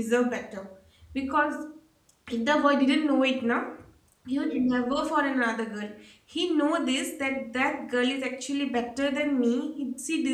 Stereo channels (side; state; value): both; identical; correlation 1.00